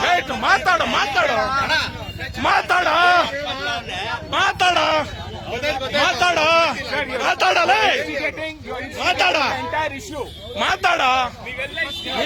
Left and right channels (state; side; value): identical; both; correlation 1.00